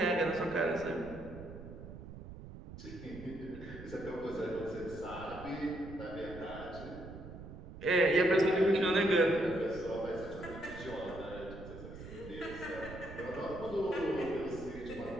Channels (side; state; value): right; noise; rumble, 13 dB below the sound